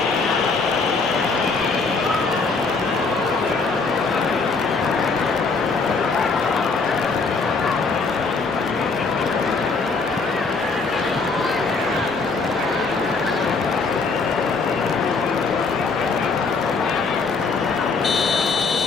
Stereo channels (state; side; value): quieter; right; 4.3 dB